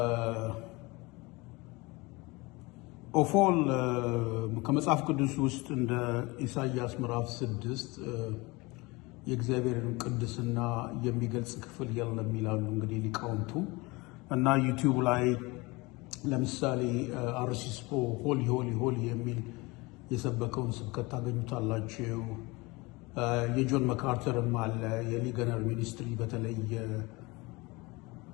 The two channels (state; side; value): quieter; right; 24.2 dB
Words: ኦፎል ከመጽሐፍ ቅዱስ ውስጥ እንደ ኢሳይያስ ምዕራፍ 6 የእግዚአብሔርን ቅድስና የሚገልጽ ክፍል የለም ይላሉ እንግዲህ ሊቃውንቱ። እና ዩቲዩብ ላይ ለምሳሌ አርሲስፖ ሆሊ ሆሊ ሆሊ የሚል የሰበከውን ስብከት ታገኙታላችሁ። የጆን መካርተርም አለ። የሊገነር ሚኒስትሪ በተለይ